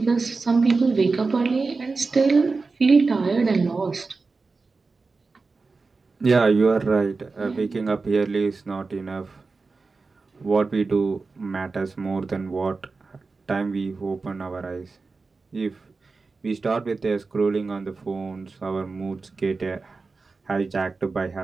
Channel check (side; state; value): left; quieter; 4.1 dB